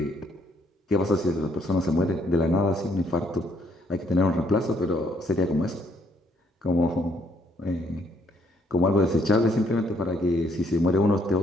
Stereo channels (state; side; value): normal; both; correlation 0.69